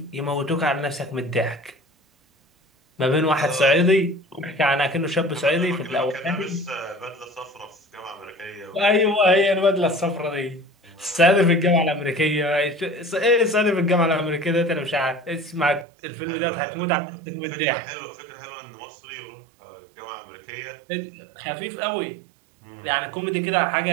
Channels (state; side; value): drops out; left; at 15.9 s